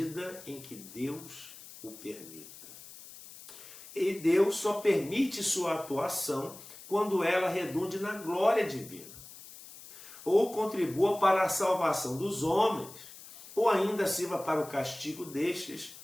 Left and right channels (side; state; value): left; noise; hiss, 17 dB below the sound